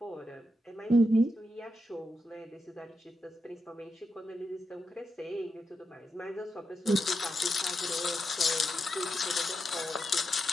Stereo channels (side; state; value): both; normal; correlation 0.85